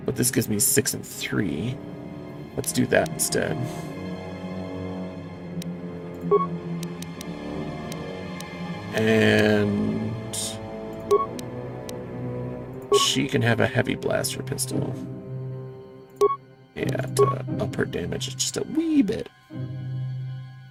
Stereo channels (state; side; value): identical; both; correlation 1.00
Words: But this gives me 6 and 3. Let's do that instead. And she can have a heavy blaster pistol. Yeah, to up her damage just a wee bit.